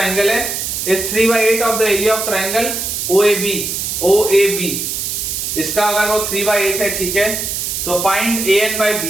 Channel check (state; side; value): noise; right; hiss, 3 dB below the sound